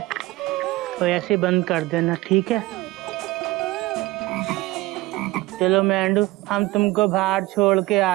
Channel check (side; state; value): left; quieter; 19.3 dB